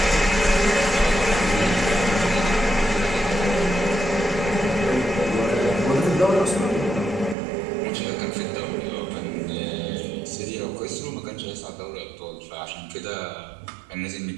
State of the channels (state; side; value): drops out; left; at 7.4 s